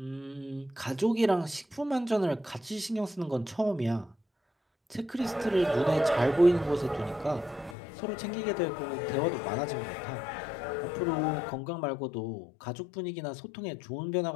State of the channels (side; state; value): right; drops out; at 7.8 s